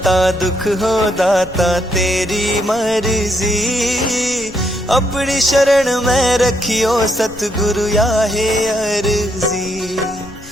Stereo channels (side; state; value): left; noise; rumble, 18 dB below the sound